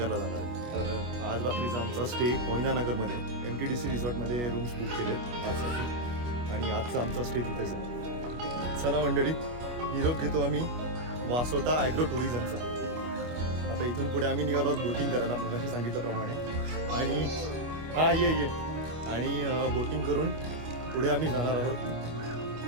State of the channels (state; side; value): late; left; 25 ms